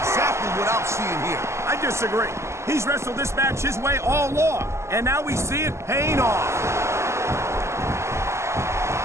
what I'm seeing here. I disagree. He's wrestled this match his way all along, and now we see it paying off.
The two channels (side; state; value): left; late; 0.13 ms